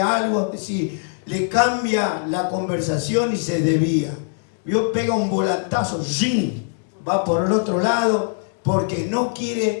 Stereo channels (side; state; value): right; silent; digital silence